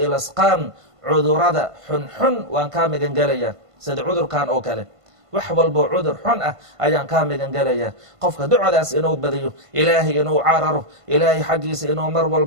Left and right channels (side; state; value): left; late; 1.5 ms